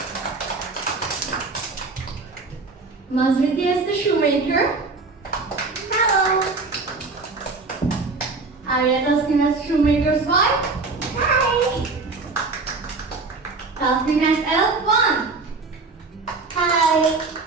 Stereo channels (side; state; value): left; quieter; 3.9 dB